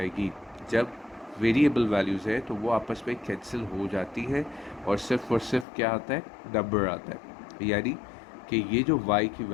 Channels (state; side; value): drops out; right; at 5.7 s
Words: जब वेरिएबल वैल्यूज़ है तो वो आपस में कैंसिल हो जाती है और सिर्फ क्या आता है, नंबर आता है, यानी कि ये जो y की